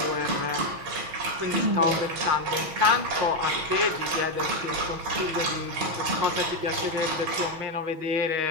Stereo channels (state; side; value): late; left; 6.4 ms